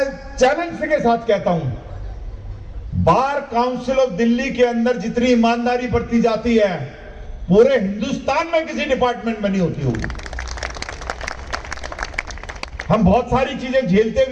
चैलेंज के साथ कहता हूं, बार काउंसिल ऑफ दिल्ली के अंदर जितनी ईमानदारी बरती जाती है पूरे हिंदुस्तान में किसी डिपार्टमेंट में नहीं होती होगी। हम बहुत सारी चीजें झेलते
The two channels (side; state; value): both; identical; correlation 1.00